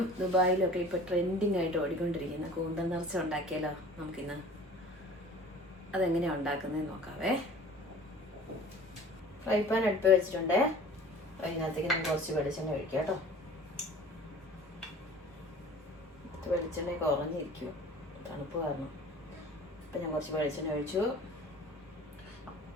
ദുബായിലും ഒക്കെ ഇപ്പോൾ ട്രെൻഡിങ് ആയിട്ട് ഓടിക്കൊണ്ടിരിക്കുന്ന കൂന്തൽ നിറച്ച ഉണ്ടാക്കിയാലോ നമുക്കിന്ന്. അതെങ്ങനെയാണ് ഉണ്ടാക്കുന്നതെന്ന് നോക്കാവേ. ഫ്രൈ പാൻ അടുപ്പ് വെച്ചിട്ടുണ്ട്. അതിനകത്തേക്ക് നമുക്ക് കുറച്ച് വെളിച്ചെണ്ണ ഒഴിക്കാം കേട്ടോ. വെളിച്ചെണ്ണ കുറഞ്ഞിരിക്കും തണുപ്പ് കാരണം. അപ്പം ഞാൻ കുറച്ച് വെളിച്ചെണ്ണ ഒഴിച്ചു.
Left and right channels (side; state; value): both; normal; correlation 0.45